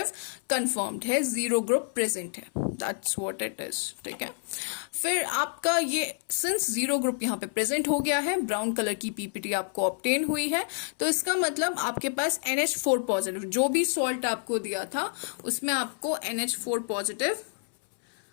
कंफर्म्ड है, जीरो ग्रुप प्रेजेंट है, दैट्स व्हाट इट इज, ठीक है। फिर आपका ये सिंस जीरो ग्रुप यहाँ पे प्रेजेंट हो गया है, ब्राउन कलर की पीपीटी आपको ऑब्टेन हुई है, तो इसका मतलब आपके पास NH4 पॉजिटिव, जो भी सॉल्ट आपको दिया था उसमें आपको NH4 पॉजिटिव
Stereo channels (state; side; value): silent; right; 59 dB below the other